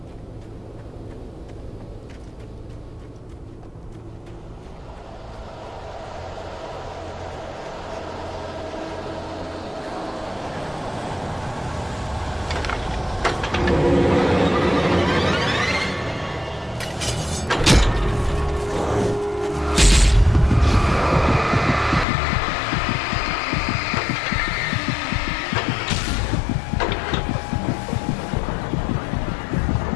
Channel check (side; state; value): right; drops out; at 22.1 s